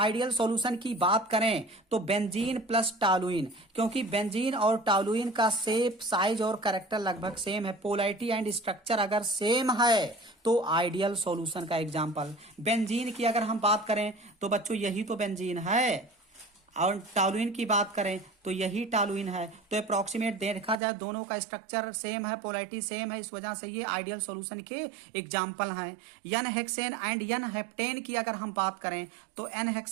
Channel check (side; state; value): left; drops out; at 20.8 s